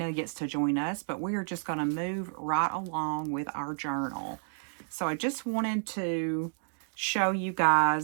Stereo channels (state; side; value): silent; left; digital silence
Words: gets to join us, but we are just going to move right along with our journal. So I just wanted to show you